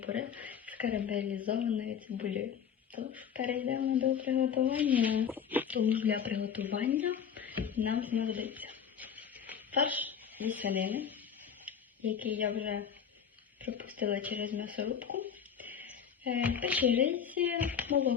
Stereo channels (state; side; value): quieter; right; 7.7 dB